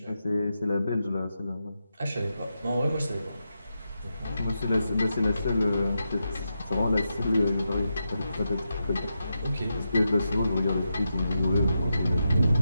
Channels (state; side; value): inverted; both; correlation -0.87